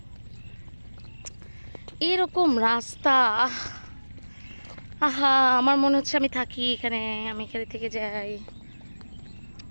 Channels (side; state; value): both; inverted; correlation -1.00